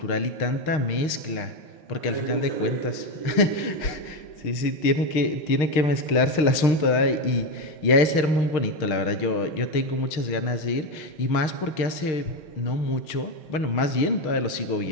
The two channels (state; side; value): late; right; 6.4 ms